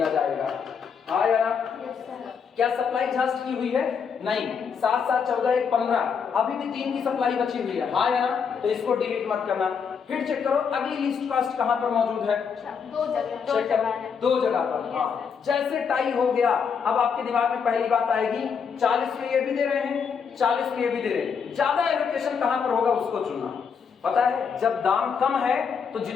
जाएगा। हाँ या ना? क्या सप्लाई एग्जॉस्ट की हुई है? नहीं। 7 7 14 1 15, अभी भी 3 की सप्लाई बची हुई है। हाँ या ना? तो इसको डिलीट मत करना। फिर चेक करो अगली लिस्ट कॉस्ट कहां पर मौजूद है? 2 जगह पर। हाँ, जैसे टाई हो गया, अब आपके दिमाग में पहली बात आएगी 40 में ये भी दे रहे हैं, 40 में ये भी दे रहे हैं, ज्यादा एलोकेशन कहां पर होगा उसको चुनना। पता है जब दाम कम है तो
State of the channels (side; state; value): right; quieter; 6.4 dB